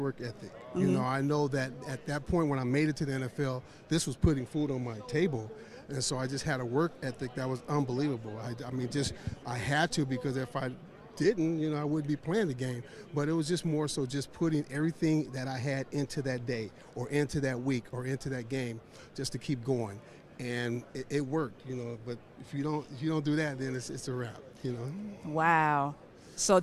I know that at that point when I made it to the NFL, this was putting food on my table. And so I just had a work ethic that was unbelievable. I had to, because if I didn't, I wouldn't be playing the game. But it was just more so just putting everything that I had into that day or into that week or into that game just to keep going. And it worked, but if you don't do that, then it's a wrap, Wow. So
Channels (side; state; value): both; identical; correlation 1.00